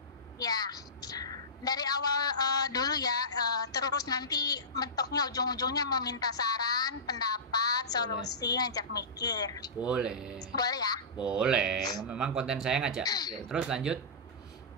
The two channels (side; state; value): both; normal; correlation -0.19